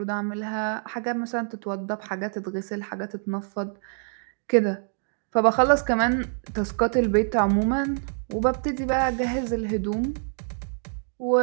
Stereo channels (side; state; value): left; silent; 61 dB below the other